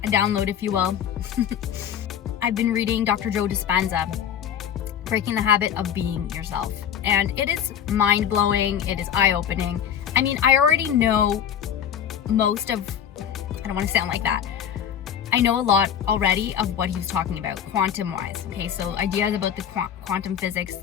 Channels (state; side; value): quieter; right; 9.1 dB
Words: a download if you will. I've been reading Dr. Joe Dispenza, Breaking the Habit of Being Yourself. And it is mind-blowing, it is eye-opening. I mean, I already know most of, I don't want to sound like that. I know a lot already of what he was talking about, quantum-wise, okay? So ideas about the quantum physics,